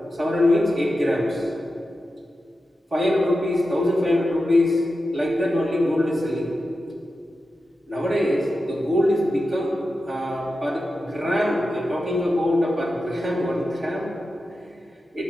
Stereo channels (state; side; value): normal; both; correlation 0.91